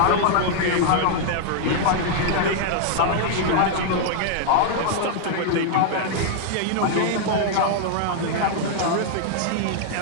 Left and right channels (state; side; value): different; both; correlation 0.00